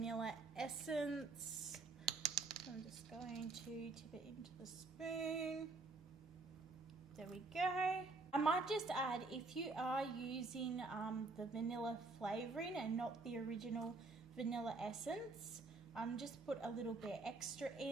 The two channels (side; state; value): left; quieter; 3.6 dB